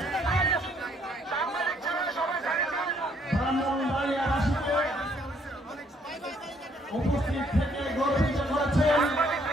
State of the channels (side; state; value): both; normal; correlation 0.67